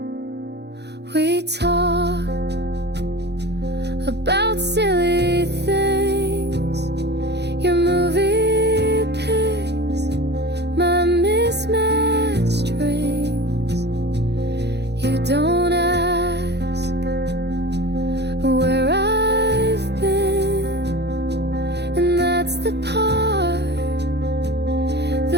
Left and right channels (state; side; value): late; left; 0.49 ms